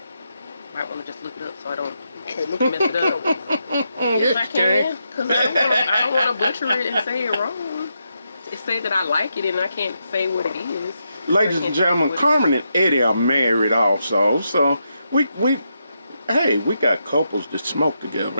Might want to just look it up so I don't mess it up. Yes, I can, because I don't want to butcher it and say it wrong. It say that I like it and I can't say what it is. Ladies and gentlemen, Carmen and Eddie are married also, so we got couples that smoke together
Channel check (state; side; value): inverted; both; correlation -0.83